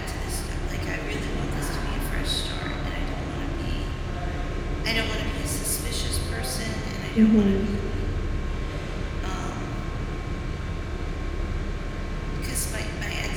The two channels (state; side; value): identical; both; correlation 1.00